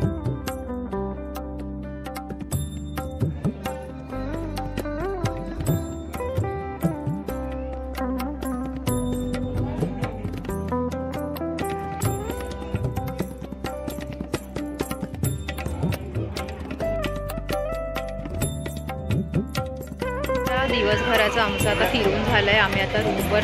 दिवसभराचं आमचं आता फिरून झालं आहे. आम्ही आता रूमवर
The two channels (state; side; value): identical; both; correlation 1.00